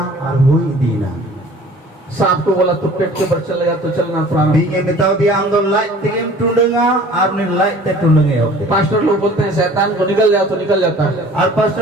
और हुई दीना सांप को बोला तू पेट के ऊपर चलेगा तो चलना प्रारंभ। Binge mitau dia amdo light tigim tundunga arni light te tundunge hote. Pastor लोग बोलते हैं शैतान को निकल जाओ तो निकल जाता है, और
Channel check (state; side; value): normal; both; correlation 0.48